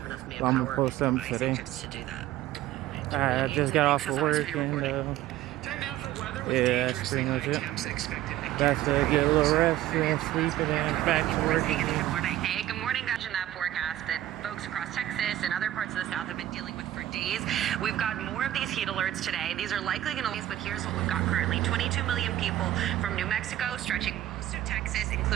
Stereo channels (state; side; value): quieter; left; 13.6 dB